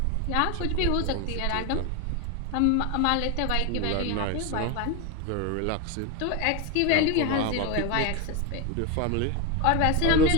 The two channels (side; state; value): both; different; correlation 0.02